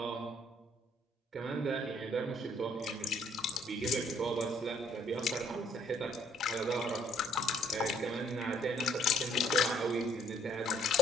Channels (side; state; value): both; normal; correlation 0.63